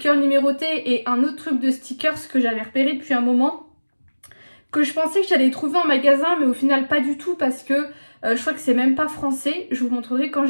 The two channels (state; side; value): inverted; both; correlation -1.00